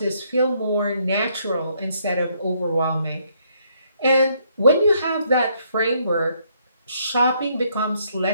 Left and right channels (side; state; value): both; inverted; correlation -0.70